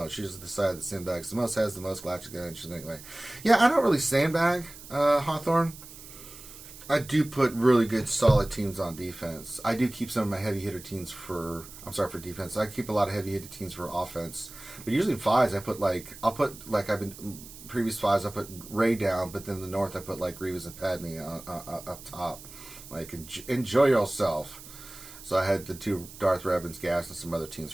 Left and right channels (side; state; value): right; noise; hiss, 16 dB below the sound